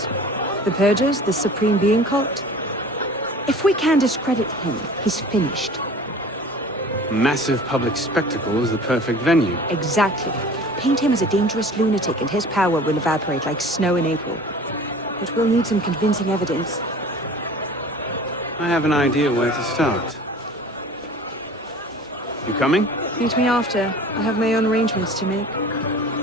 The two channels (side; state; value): both; normal; correlation 0.43